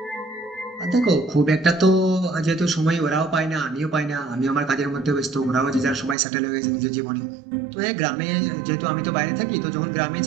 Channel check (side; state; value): left; drops out; at 6.2 s